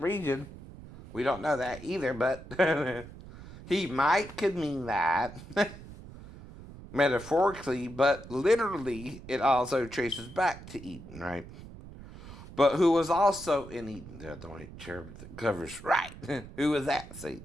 region, we don't know that either, but he might could mean that metaphorically, but literally it also traces back to Eden, right? But who was also in Eden? The white cherub that covers, right? Who was that?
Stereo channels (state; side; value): noise; right; rumble, 15 dB below the sound